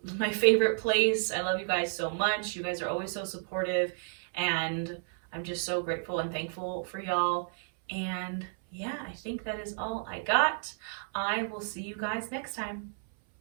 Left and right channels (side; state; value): left; silent; 57 dB below the other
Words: my favorite place. I love you guys so much. You guys are always so supportive. And I'm just so grateful and thankful for y'all. And yeah, I think that is all I got. I will see you guys next time.